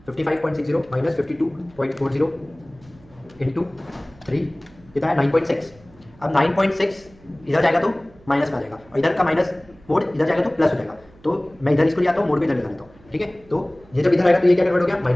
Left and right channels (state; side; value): noise; right; hum, 26 dB below the sound